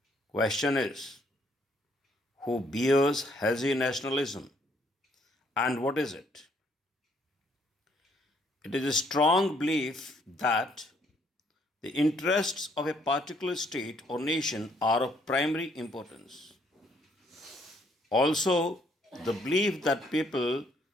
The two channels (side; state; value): both; normal; correlation 0.67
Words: Question is, who bears hazy nationalism and what is it? It is a strong belief that the interests of a particular state or nation are of primary importance. Also, the belief that people